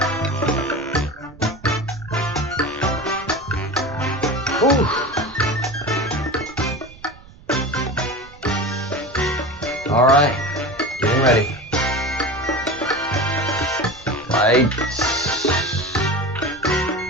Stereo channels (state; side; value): noise; right; rumble, 22 dB below the sound